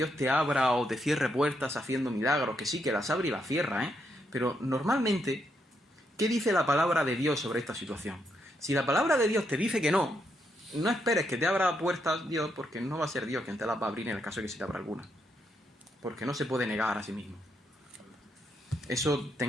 te abra o te cierre puertas haciendo milagros, que sí, que las abre y las cierra, ¿eh? Pero normalmente, ¿qué dice la palabra de Dios sobre esta situación? Si la palabra de Dios te dice que no, no esperes que te abra puertas Dios, porque no va a ser Dios quien te las va a abrir en el caso de que se te abra alguna. Porque no se puede negar a sí mismo. Eso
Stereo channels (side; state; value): both; normal; correlation 0.78